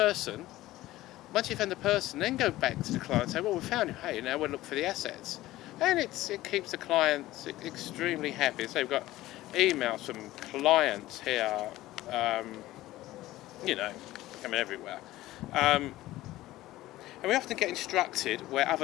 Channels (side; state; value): right; quieter; 16.4 dB